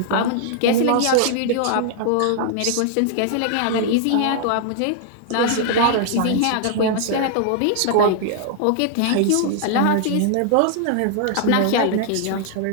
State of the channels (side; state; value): both; different; correlation -0.01